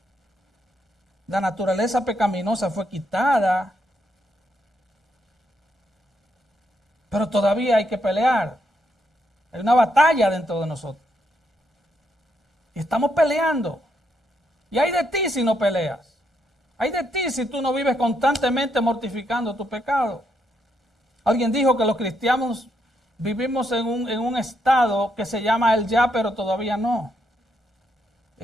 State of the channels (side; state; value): both; normal; correlation 0.78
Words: La naturaleza pecaminosa fue quitada, pero todavía hay que pelear. Hay una batalla dentro de nosotros. Y estamos peleando. Y hay de ti si no peleas. Hay de ti si tú no vives constantemente mortificando tu pecado. Alguien dijo que los cristianos vivimos en un estado que se llama el ya, pero todavía no.